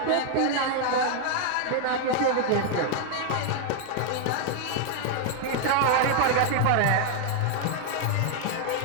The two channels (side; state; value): both; different; correlation 0.00